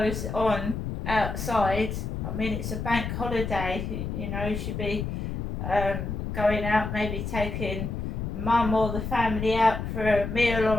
on outside. I mean, it's a bank holiday. You know, you should be going out, maybe taking mum or the family out for a meal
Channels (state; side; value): noise; left; rumble, 4 dB below the sound